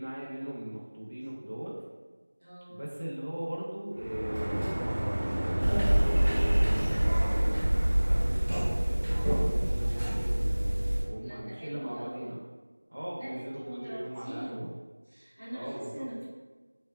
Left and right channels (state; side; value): inverted; both; correlation -1.00